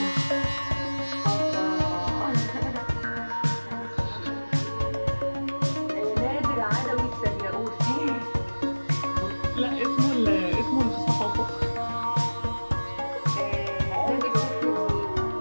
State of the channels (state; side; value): inverted; both; correlation -1.00